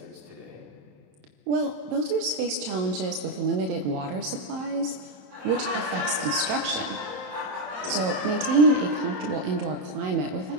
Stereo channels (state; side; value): late; left; 27 ms